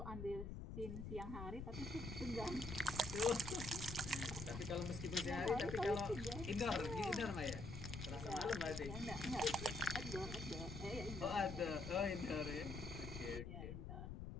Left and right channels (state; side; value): noise; left; rumble, 7 dB below the sound